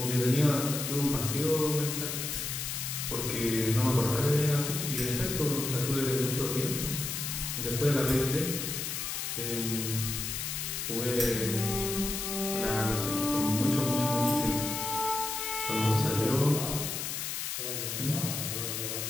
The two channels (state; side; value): noise; left; hiss, 3 dB below the sound